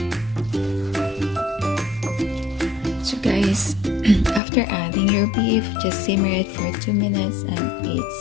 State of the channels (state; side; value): drops out; right; at 4.4 s